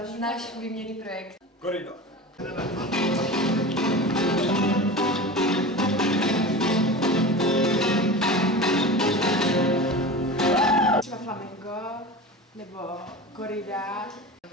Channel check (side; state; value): both; normal; correlation 0.31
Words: Náš výměnný projekt. Korida. Třeba flamenco nebo korida.